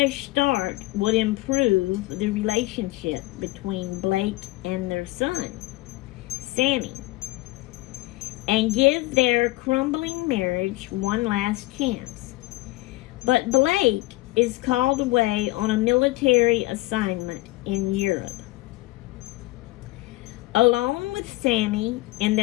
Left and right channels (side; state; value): right; quieter; 20.0 dB